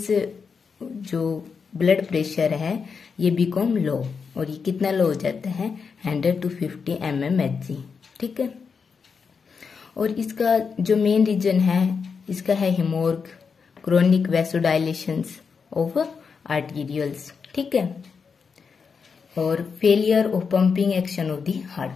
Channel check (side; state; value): right; quieter; 5.6 dB